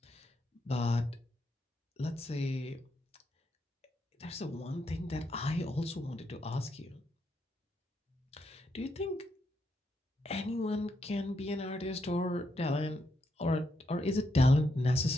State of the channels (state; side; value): normal; both; correlation 0.80